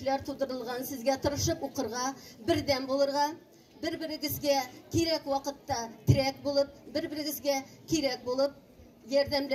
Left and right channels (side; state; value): both; identical; correlation 1.00